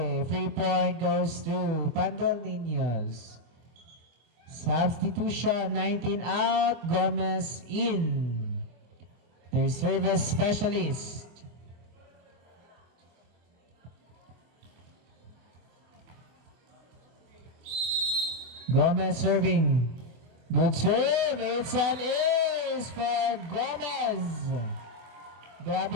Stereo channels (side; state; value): left; late; 24 ms